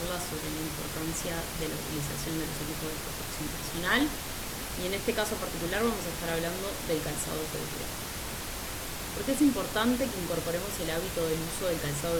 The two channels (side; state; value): both; identical; correlation 1.00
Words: sobre la importancia de la utilización de los equipos de protección personal y en este caso particular vamos a estar hablando del calzado de seguridad. ¿Por qué es importante que incorporemos el hábito del uso del calzado